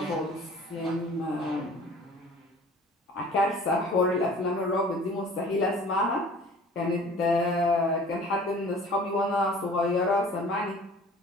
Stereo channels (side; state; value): both; normal; correlation 0.47